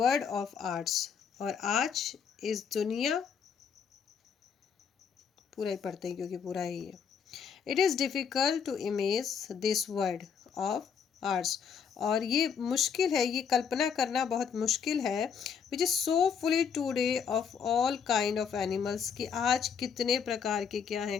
of ours। और आज इस दुनिया, पूरा ही पढ़ते हैं क्योंकि पूरा ही है। It is difficult to imagine this world of ours। और ये मुश्किल है, ये कल्पना करना बहुत मुश्किल है। Which is so fully today of all kind of animals, कि आज कितने प्रकार के क्या हैं,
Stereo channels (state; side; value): quieter; right; 6.9 dB